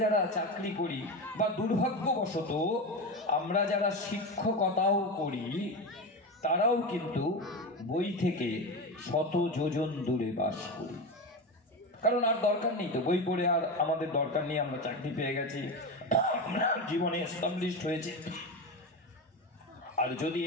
যারা চাকরি করি বা দুর্ভাগ্যবশত আমরা যারা শিক্ষকতাও করি, তারাও কিন্তু বই থেকে শত যোজন দূরে বাস করি। কারণ আর দরকার নেই তো, বই পড়ে আর আমাদের দরকার নেই, আমরা চাকরি পেয়ে গেছি, আমরা জীবনে এস্টাবলিশড হয়েছে। আর যদি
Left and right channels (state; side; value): normal; both; correlation 0.20